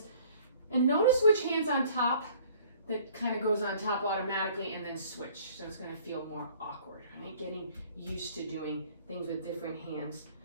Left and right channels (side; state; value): both; inverted; correlation -0.55